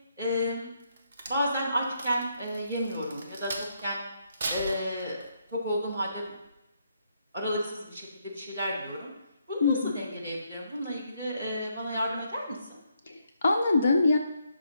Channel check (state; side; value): inverted; both; correlation -0.75